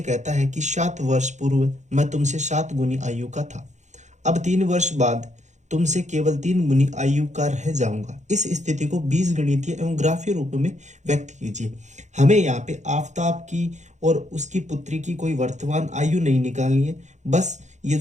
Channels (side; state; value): left; late; 0.34 ms